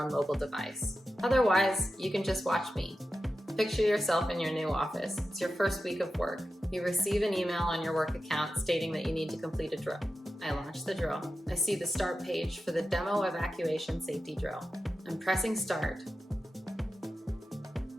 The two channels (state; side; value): normal; both; correlation 0.91